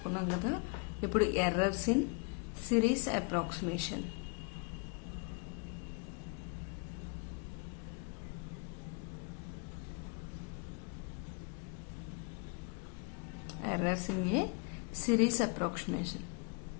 కదా. ఇప్పుడు errors in series approximation. Errors in a series approximation.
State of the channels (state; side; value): quieter; right; 33.0 dB